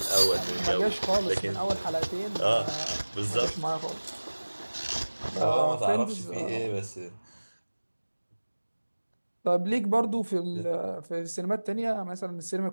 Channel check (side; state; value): both; inverted; correlation -1.00